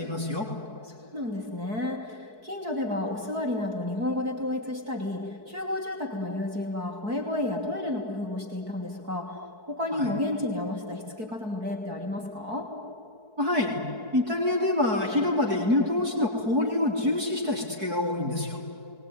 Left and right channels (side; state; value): left; late; 4.6 ms